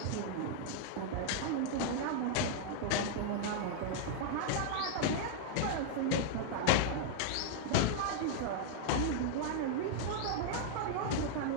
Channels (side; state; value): both; different; correlation -0.01